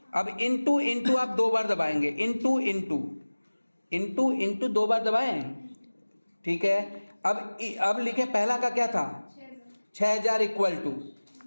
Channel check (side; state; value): both; inverted; correlation -1.00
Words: अब इनटू इनटू आप 2 बार दबाएंगे, इनटू इनटू इनटू इनटू 2 बार दबाएं, ठीक है। अब लिखे पहला का क्या था? 6,000 इक्वल टू